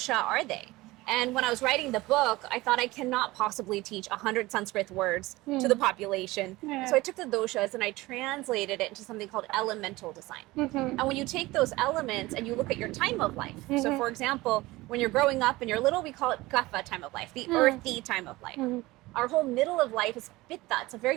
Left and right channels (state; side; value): quieter; left; 19.8 dB